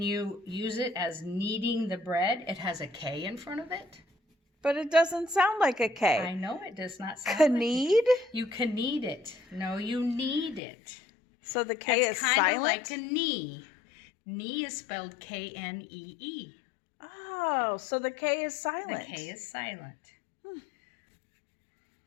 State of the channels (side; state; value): right; drops out; at 10.6 s